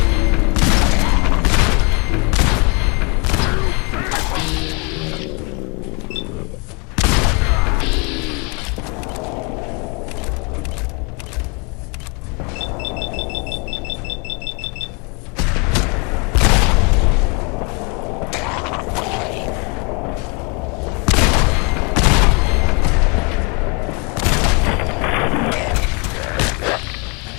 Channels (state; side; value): quieter; right; 32.3 dB